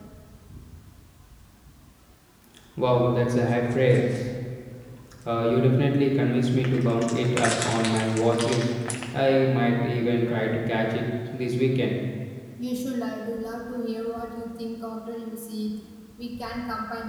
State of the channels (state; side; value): identical; both; correlation 1.00